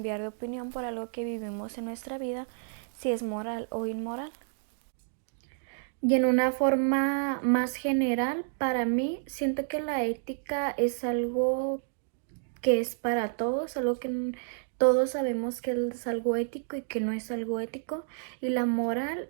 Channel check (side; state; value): left; silent; digital silence